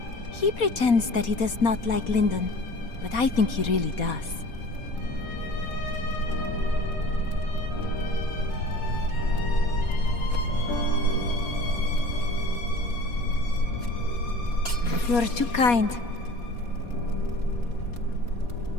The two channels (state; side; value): late; right; 4.2 ms